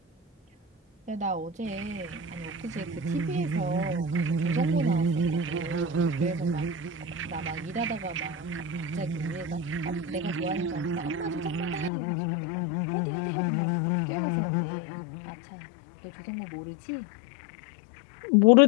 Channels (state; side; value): drops out; right; at 11.9 s